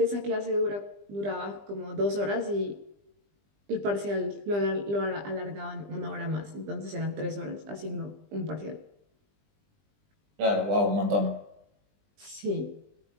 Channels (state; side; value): late; left; 20 ms